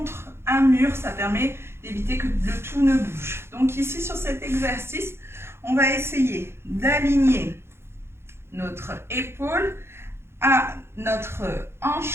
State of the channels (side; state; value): left; late; 0.12 ms